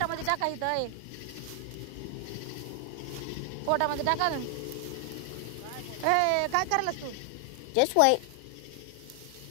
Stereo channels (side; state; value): both; different; correlation 0.00